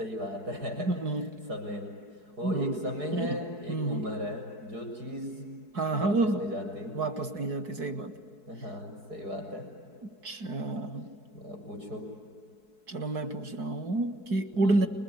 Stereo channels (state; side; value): late; left; 4.7 ms